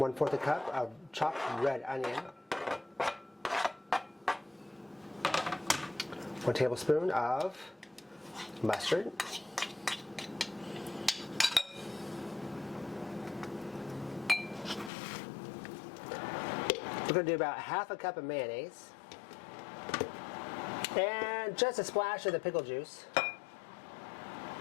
a cup of chopped red onion, 1 tablespoon of mustard, we're going to do about half a cup of mayonnaise, and just a splash of the pickle juice,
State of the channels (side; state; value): right; drops out; at 14.9 s